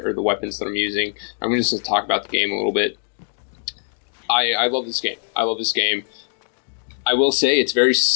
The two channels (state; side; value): silent; right; digital silence